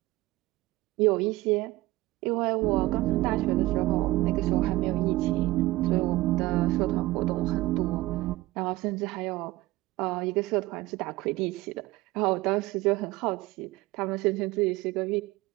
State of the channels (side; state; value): left; quieter; 18.9 dB